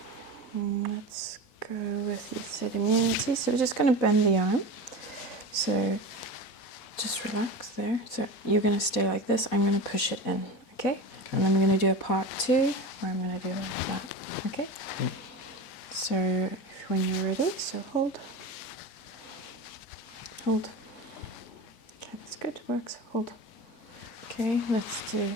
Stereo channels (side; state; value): right; late; 4.1 ms